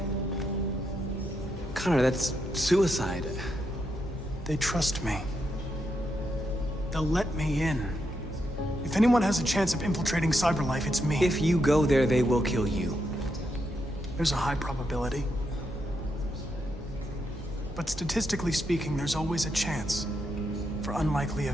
Connor, that's suicide. They trust me. They'll let me in. If anyone has a chance of infiltrating CyberLife, it's me. If you go there, they will kill you. There's a high probability. But statistically speaking, there's always a chance for unlikely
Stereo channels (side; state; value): both; normal; correlation 0.81